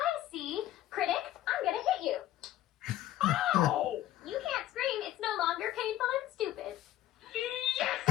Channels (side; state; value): right; quieter; 13.6 dB